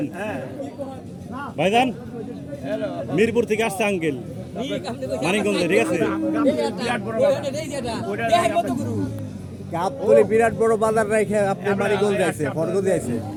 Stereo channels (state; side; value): identical; both; correlation 1.00